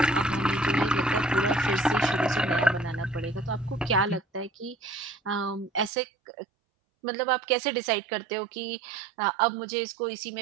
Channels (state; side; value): drops out; left; at 5.9 s